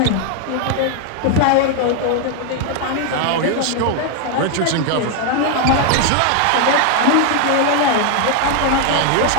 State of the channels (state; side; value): different; both; correlation 0.01